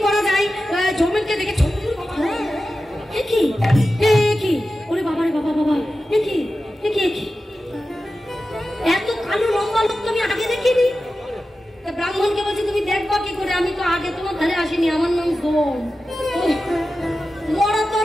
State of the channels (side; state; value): both; normal; correlation 0.93